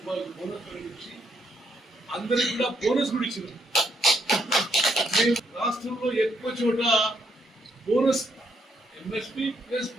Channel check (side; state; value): both; normal; correlation 0.74